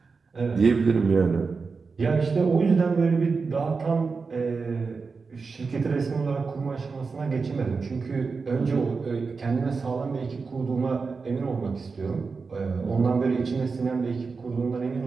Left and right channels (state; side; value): quieter; left; 4.7 dB